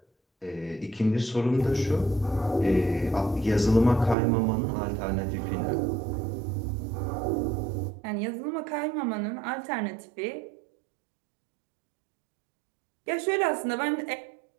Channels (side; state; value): left; drops out; at 4.2 s